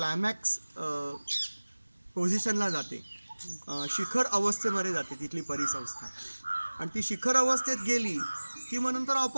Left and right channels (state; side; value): inverted; both; correlation -1.00